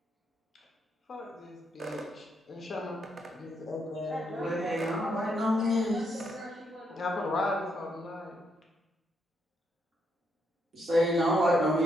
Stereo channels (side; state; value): both; normal; correlation 0.77